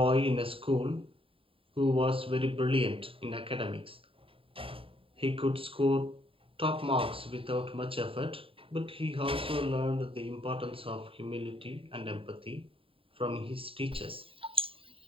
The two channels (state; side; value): late; left; 0.26 ms